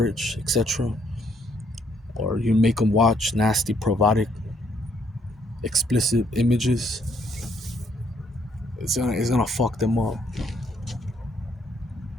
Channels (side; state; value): both; normal; correlation 0.69